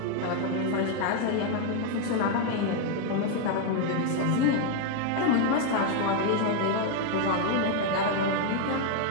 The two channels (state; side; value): different; both; correlation 0.00